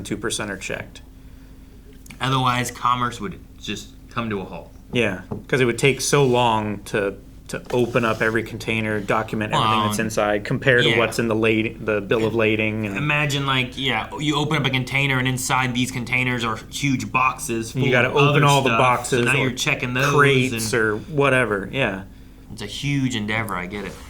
2% are checked. Otherwise, commerce would just come to a halt. Yeah, because it would take so long to open up every container, document everything that's inside, compared to what's in the bill of lading. And imagine, like, you open up a container, and inside these containers are huge boxes full you got to of open other all stuff, the boxes, so now or you're checking those, crates or whatever. Yeah, it's a huge endeavor. I get it.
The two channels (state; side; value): identical; both; correlation 1.00